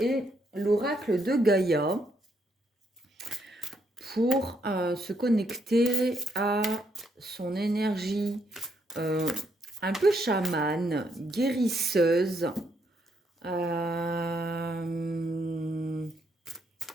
l'oracle de Gaïa pour se connecter à son énergie un peu chamane, guérisseuse.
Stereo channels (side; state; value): both; normal; correlation 0.75